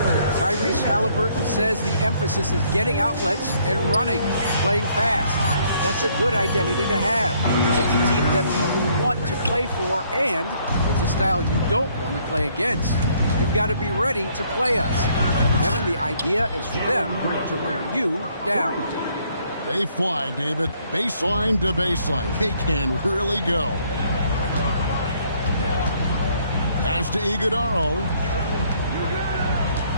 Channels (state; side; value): inverted; both; correlation -0.66